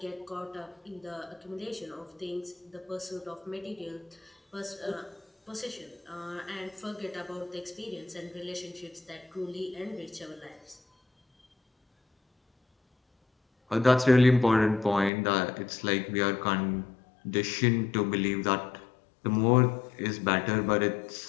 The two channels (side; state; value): right; drops out; at 15.1 s